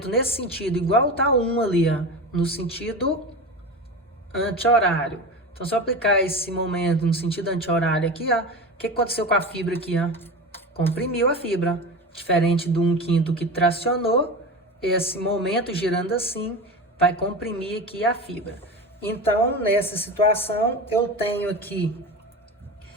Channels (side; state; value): both; normal; correlation 0.27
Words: nesse sentido, igual está 1 ali, ó, no sentido anti-horário. Então, se eu aplicar esse momento no sentido anti-horário aqui, ó, o que aconteceu com a fibra aqui? Ó? Comprimiu a fibra. Diferente do 1/5 que tracionou, esse momento girando assim vai comprimir aqui a fibra. Então, nessa situação, eu tenho aqui